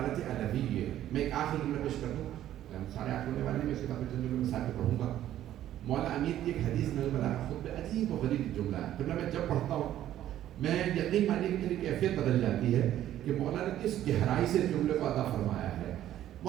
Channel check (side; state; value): left; quieter; 12.3 dB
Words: الہی ہے. میں ایک آخری جملہ پیش کر دوں، سارے آٹھ ہونے والے میں اس کے بعد چند جملے مثال پہ پڑھوں گا. مولا امیر کی ایک حدیث میں بلاغہ خود پہ عجیب و غریب جملہ ہے. جملہ میں جب پڑھتا ہوں میں یقین مانیے کہ میری کیفیت بدل جاتی ہے کہ مولا نے کس گہرائی سے جملے کو ادا فرمایا ہے.